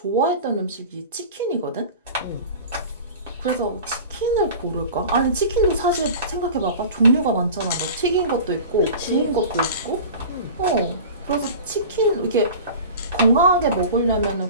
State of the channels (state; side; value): inverted; both; correlation -0.36